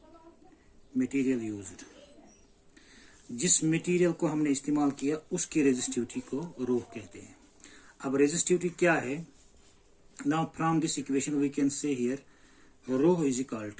material used, जिस मटेरियल को हमने इस्तेमाल किया उसकी रेजिस्टिविटी को रो कहते हैं। अब रेजिस्टिविटी क्या है? Now from this equation we can say here rho is equal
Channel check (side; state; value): both; identical; correlation 1.00